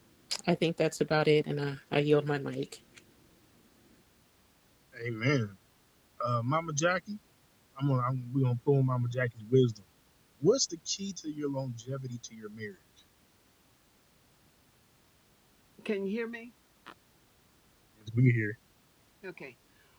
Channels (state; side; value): identical; both; correlation 1.00